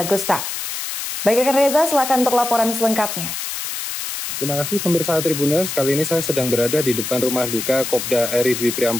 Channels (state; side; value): noise; left; hiss, 5 dB below the sound